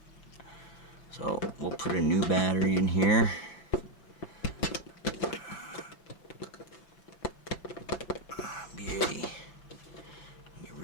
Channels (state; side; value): late; right; 6.0 ms